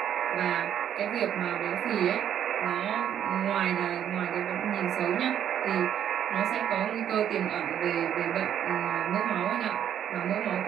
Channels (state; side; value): quieter; left; 9.8 dB